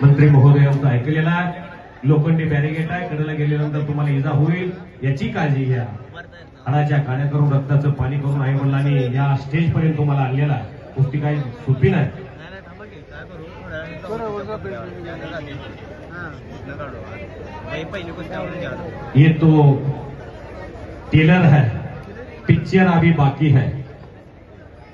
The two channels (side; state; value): both; identical; correlation 1.00